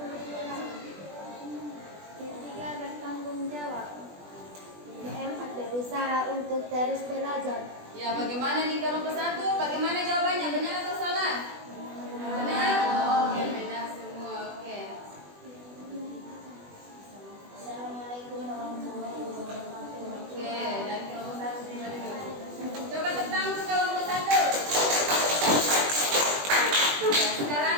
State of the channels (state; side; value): late; left; 20 ms